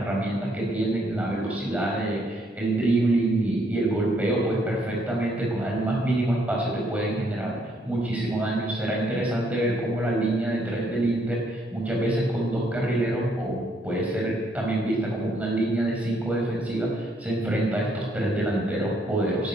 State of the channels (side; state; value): both; normal; correlation 0.70